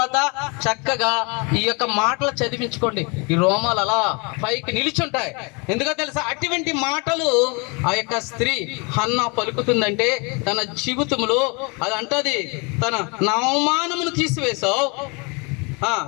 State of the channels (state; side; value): quieter; right; 30.9 dB